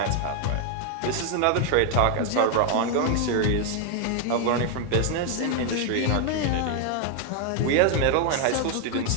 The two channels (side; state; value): both; different; correlation 0.00